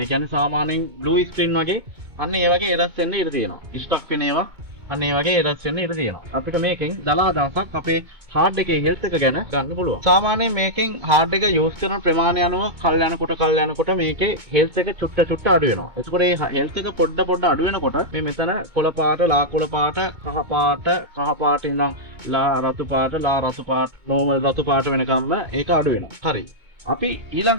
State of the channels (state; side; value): late; left; 2.2 ms